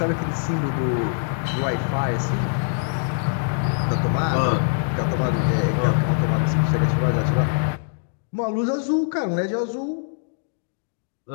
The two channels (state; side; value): silent; right; digital silence